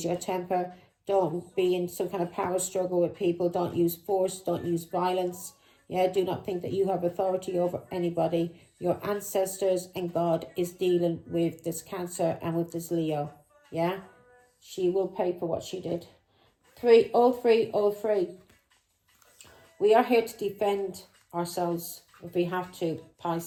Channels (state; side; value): identical; both; correlation 1.00